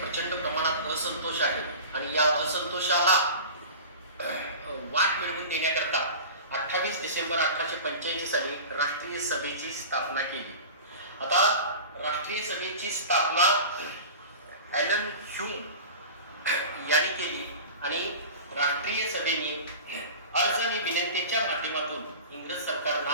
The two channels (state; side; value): inverted; both; correlation -0.35